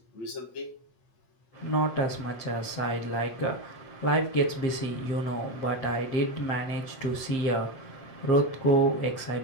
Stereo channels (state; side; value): late; right; 8.2 ms